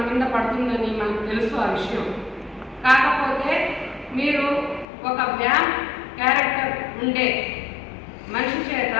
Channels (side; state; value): right; drops out; at 4.9 s